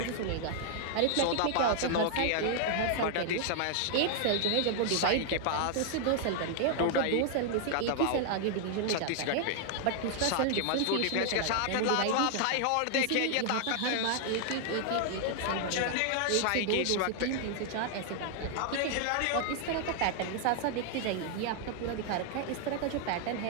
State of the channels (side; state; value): both; different; correlation 0.00